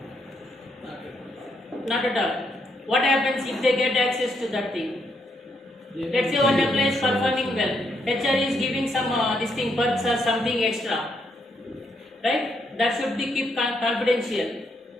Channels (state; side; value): normal; both; correlation 0.76